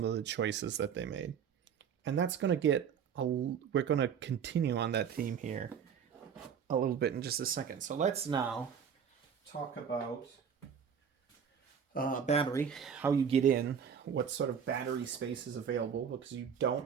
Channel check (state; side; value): quieter; left; 7.5 dB